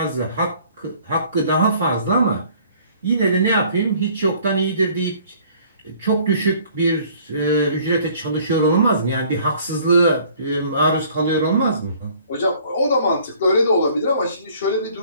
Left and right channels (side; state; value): both; inverted; correlation -0.56